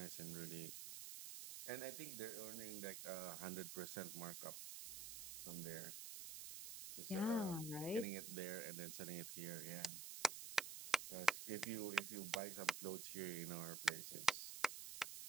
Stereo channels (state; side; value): noise; right; hiss, 7 dB below the sound